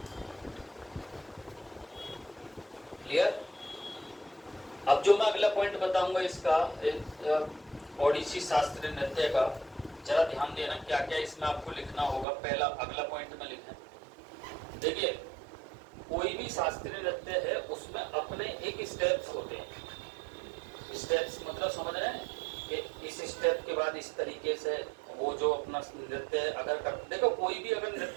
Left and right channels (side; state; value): left; drops out; at 12.2 s